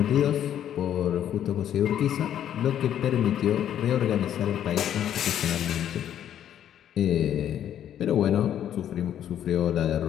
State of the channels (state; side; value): quieter; right; 10.4 dB